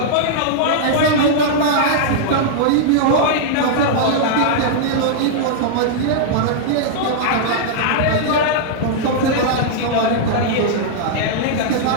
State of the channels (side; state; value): both; different; correlation -0.02